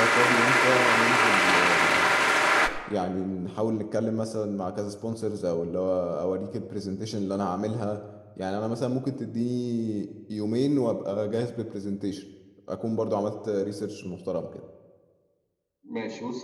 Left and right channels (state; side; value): identical; both; correlation 1.00